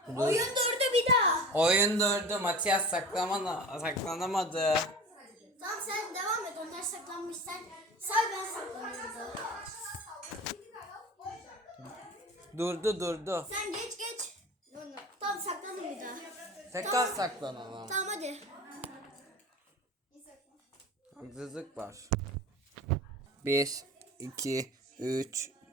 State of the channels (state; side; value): normal; both; correlation 0.36